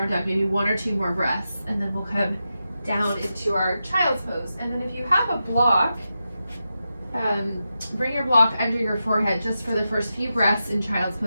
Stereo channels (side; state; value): both; inverted; correlation -0.90